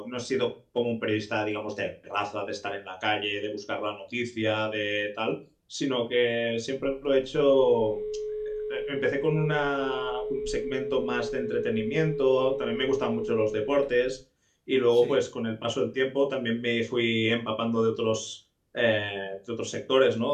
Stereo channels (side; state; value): both; identical; correlation 1.00